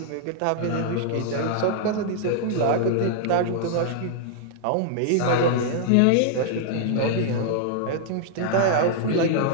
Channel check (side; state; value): both; different; correlation -0.01